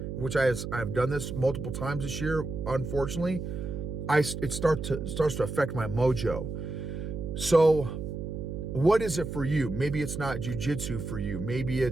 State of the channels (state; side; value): noise; right; hum, 6 dB below the sound